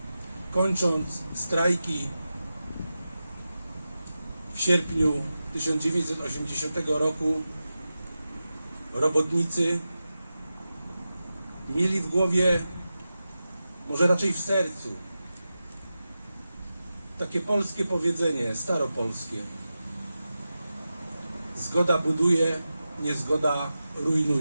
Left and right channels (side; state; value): both; inverted; correlation -0.93